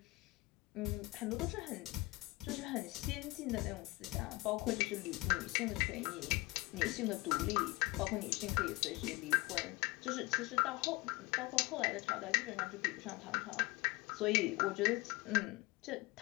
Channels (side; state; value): right; quieter; 22.3 dB